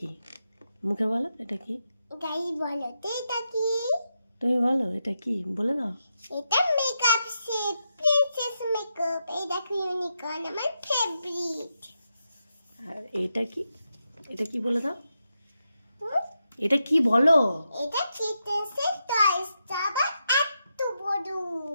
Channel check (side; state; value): both; inverted; correlation -0.85